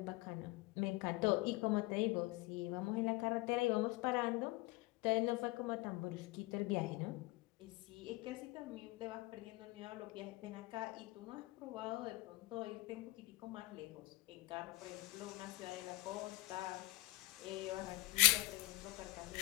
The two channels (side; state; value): right; quieter; 21.7 dB